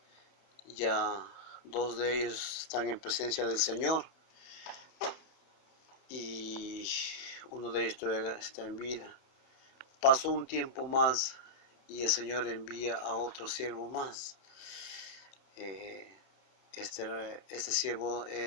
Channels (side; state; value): right; late; 31 ms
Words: Ya dos de ellos están en presencia del Señor y uno de ellos todavía está en vida. Pasó un tiempo más y el Señor envía a otro siervo más. Este siervo